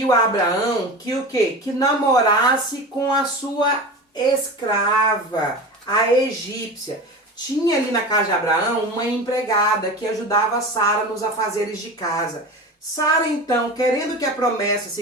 a Abraão que o quê? Que namorasse com a sua escrava, a egípcia. Tinha ali na casa de Abraão uma empregada que ajudava Sara nos afazeres de casa. Sara, então, querendo que a promessa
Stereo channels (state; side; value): normal; both; correlation 0.30